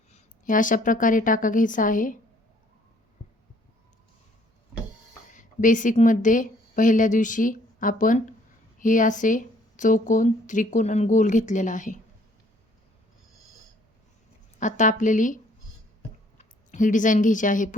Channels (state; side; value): normal; both; correlation 0.61